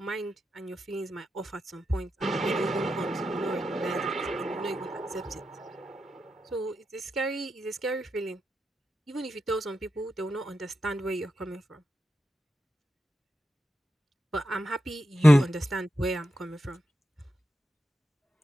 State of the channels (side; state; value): both; normal; correlation 0.88